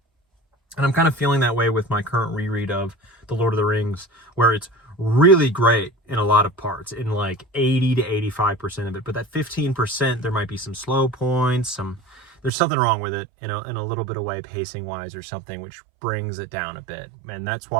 And I'm kind of feeling that way with my current reread of The Lord of the Rings, where it's really great in a lot of parts, in like 80 to 85% of it. But that 15%, there might be some slow points, there's something wrong with it, in a little bit of way, pacing wise or something, which brings it down a bit. And that's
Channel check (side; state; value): left; drops out; at 12.5 s